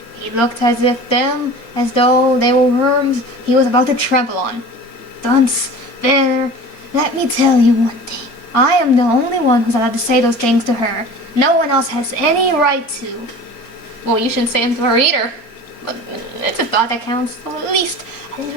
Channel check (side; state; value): right; late; 4.3 ms